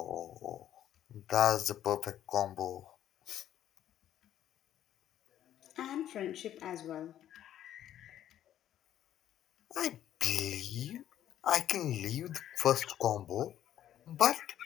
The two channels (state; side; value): quieter; right; 11.4 dB